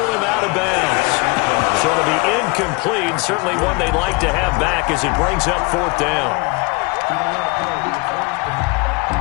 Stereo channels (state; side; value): quieter; right; 27.6 dB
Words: him out of bounds. So it'll be incomplete, certainly one they'd like to have back as it brings up 4th down.